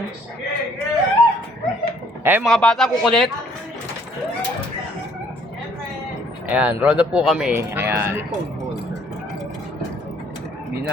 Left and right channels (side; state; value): both; normal; correlation 0.62